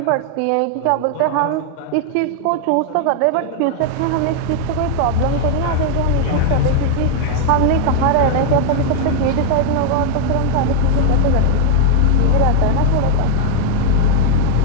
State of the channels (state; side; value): different; both; correlation 0.00